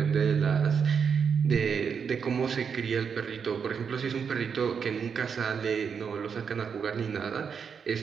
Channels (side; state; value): left; quieter; 6.6 dB